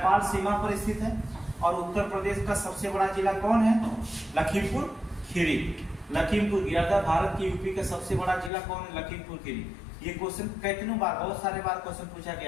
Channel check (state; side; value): drops out; right; at 8.5 s